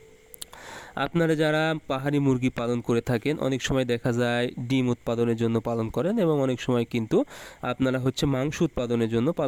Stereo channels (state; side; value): identical; both; correlation 1.00